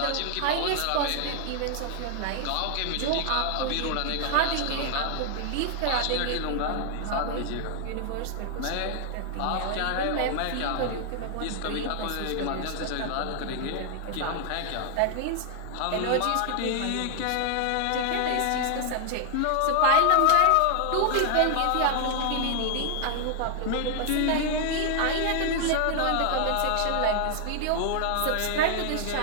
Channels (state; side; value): different; both; correlation 0.00